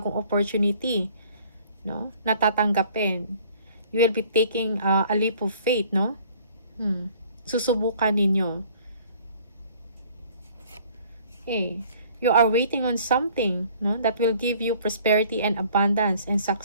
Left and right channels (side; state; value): both; inverted; correlation -0.55